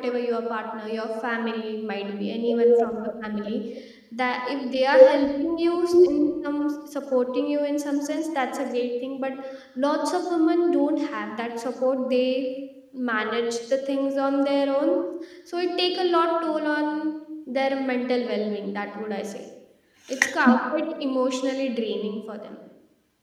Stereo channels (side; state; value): both; identical; correlation 1.00